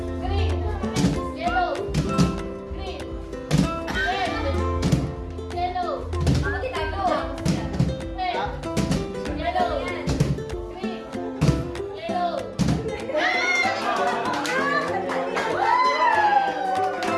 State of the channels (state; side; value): identical; both; correlation 1.00